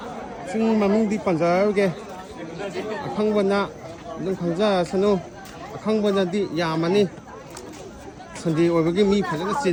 Sing maming di panjao ge. Akhang bana dum khangja sanu. Akhang bana di yamani. Sunday oibagi mi phajana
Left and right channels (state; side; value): identical; both; correlation 1.00